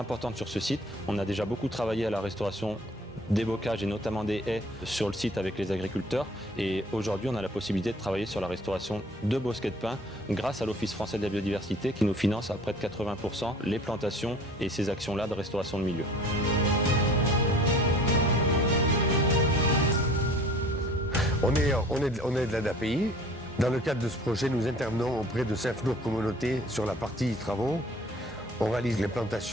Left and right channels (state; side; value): normal; both; correlation 0.49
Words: sur ce site. On a déjà beaucoup travaillé à la restauration des bocages et notamment des haies sur le site avec les agriculteurs et aujourd'hui on a la possibilité de travailler sur la restauration de bosquets de pins grâce à l'Office français de la biodiversité qui nous finance à près de 80% les plantations et ces actions-là de restauration de milieux. On est de l'ADAPI. Dans le cadre de ce projet, nous intervenons auprès de Saint-Flour Communauté sur la partie travaux. On réalise les